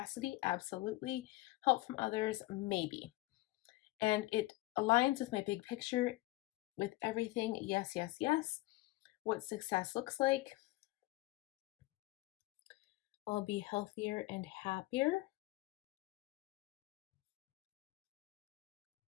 absolutely. Help from others, maybe. And it aligns with my big picture, with everything, yes, yes, yes. What success looks like. I'll be healthier and happier.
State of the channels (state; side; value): quieter; right; 19.6 dB